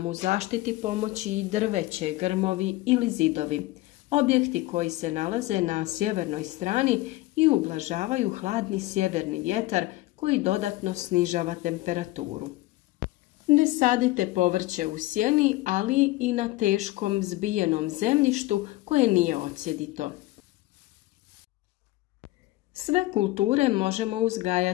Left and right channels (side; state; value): right; quieter; 18.3 dB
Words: u zaštiti pomoći i drveće, grmovi ili zidovi, objekti koji se nalaze na sjevernoj strani i ublažavaju hladni sjeverni vjetar koji dodatno snižava temperaturu. Ne sadite povrće u sjeni, ali i na teškom zbijenom zemljištu koje nije odsjedito. Sve kulture možemo